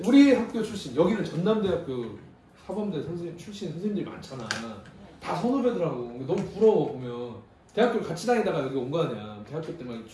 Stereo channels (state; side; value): identical; both; correlation 1.00